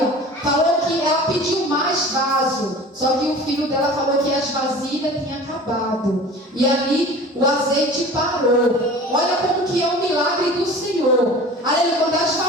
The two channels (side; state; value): both; normal; correlation 0.40